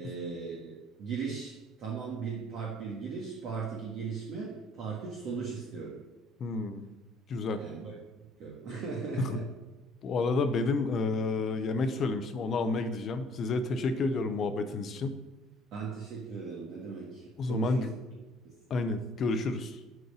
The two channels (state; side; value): normal; both; correlation 0.58